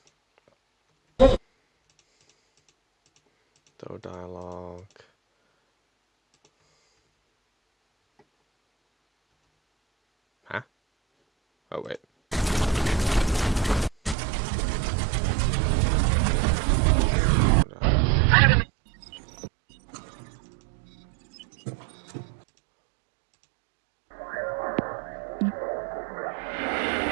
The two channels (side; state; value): left; drops out; at 14.2 s